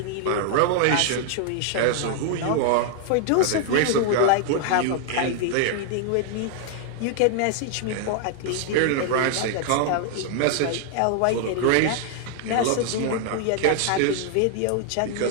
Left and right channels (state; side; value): different; both; correlation 0.00